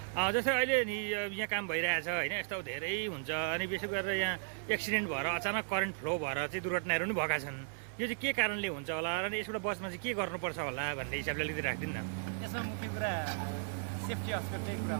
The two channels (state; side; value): silent; left; digital silence